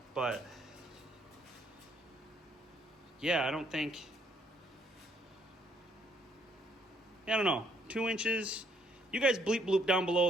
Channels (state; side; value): normal; both; correlation 0.67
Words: But yeah, I don't know. 2 inches. You guys bleep bloop down below